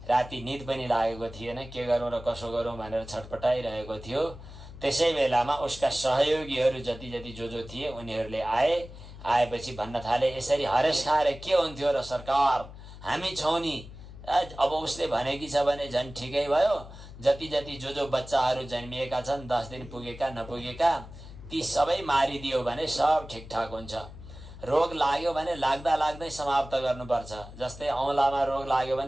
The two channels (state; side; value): noise; left; hum, 15 dB below the sound